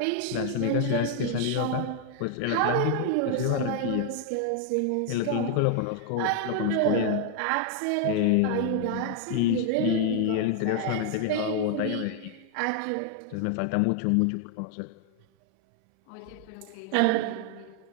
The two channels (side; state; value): both; different; correlation 0.00